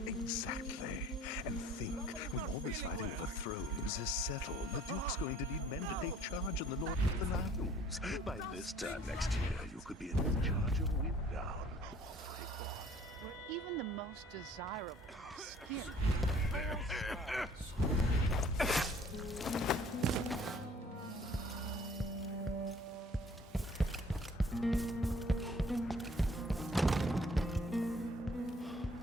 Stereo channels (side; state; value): both; normal; correlation 0.55